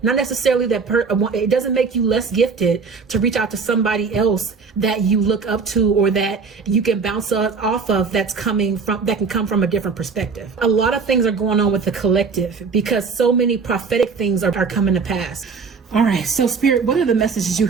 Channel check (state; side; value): quieter; left; 5.1 dB